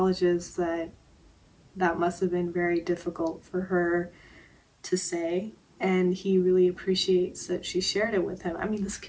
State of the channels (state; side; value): identical; both; correlation 1.00